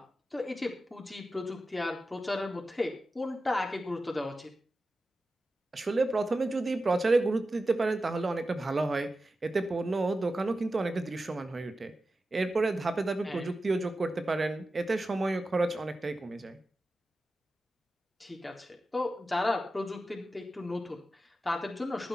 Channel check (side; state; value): both; normal; correlation 0.93